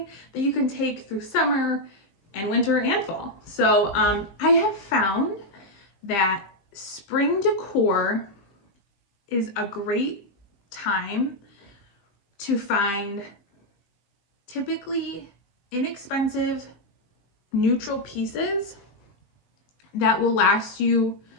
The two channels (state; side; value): late; right; 20 ms